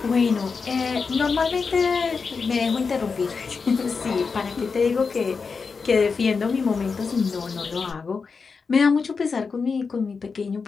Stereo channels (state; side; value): quieter; right; 5.0 dB